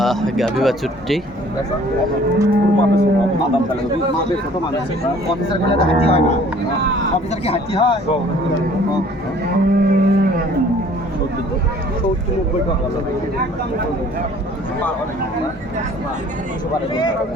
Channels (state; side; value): normal; both; correlation 0.54